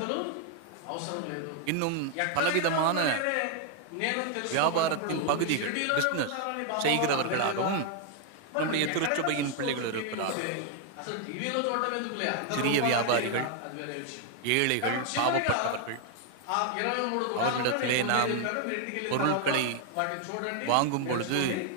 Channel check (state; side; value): different; both; correlation 0.00